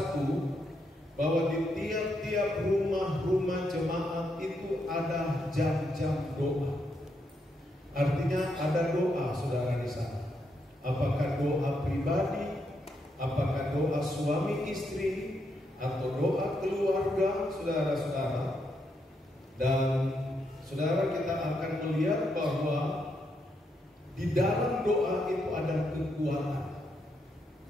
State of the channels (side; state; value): both; normal; correlation 0.79